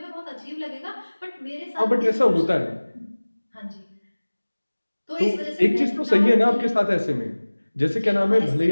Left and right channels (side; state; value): both; inverted; correlation -1.00